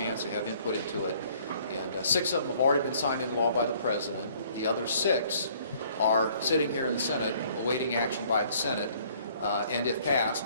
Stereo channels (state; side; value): inverted; both; correlation -0.59